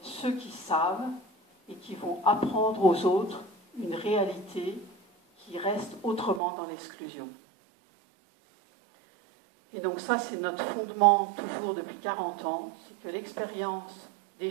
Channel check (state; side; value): drops out; left; at 6.4 s